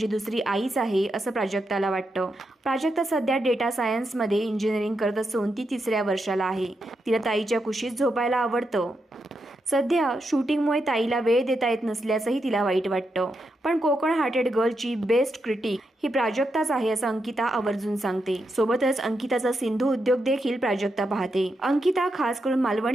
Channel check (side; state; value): both; normal; correlation 0.84